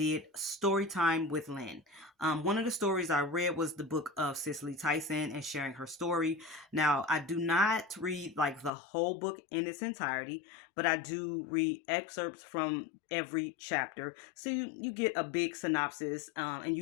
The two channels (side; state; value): right; drops out; at 8.7 s